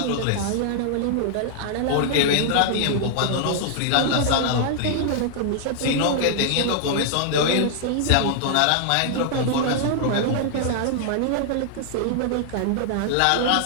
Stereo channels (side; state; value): both; different; correlation -0.01